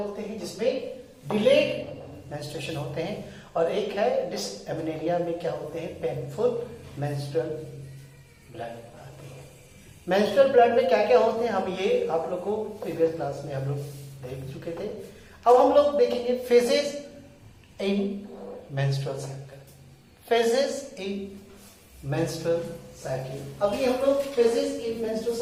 हैं, जिसमें डिलेड मेंस्ट्रुएशन होते हैं। और एक है डिसएमेनोरिया में क्या होते हैं, पेनफुल मेंस्ट्रुअल ब्लड आते हैं। मेंस्ट्रुअल ब्लड में क्या क्या होते हैं, हम ये आप लोग को प्रीवियस क्लास में हम लोग देख चुके थे। अब हम लोग देखेंगे फेजेस इन मेंस्ट्रुअल साइकिल, फेजेस इन मेंस्ट्रुअल साइकिल। अभी हम लोग फेजेस इन मेंस्ट्रुअल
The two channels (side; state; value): both; identical; correlation 1.00